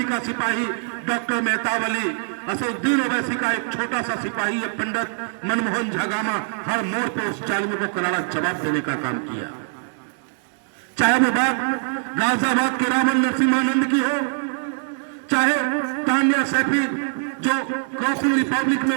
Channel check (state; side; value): silent; left; 64 dB below the other